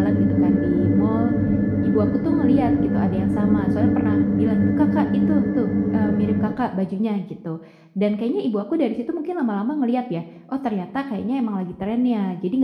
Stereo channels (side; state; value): both; identical; correlation 1.00